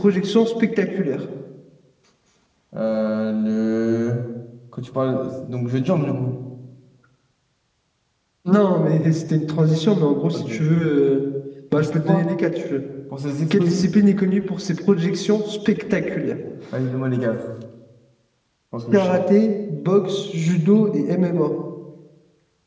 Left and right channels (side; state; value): both; identical; correlation 1.00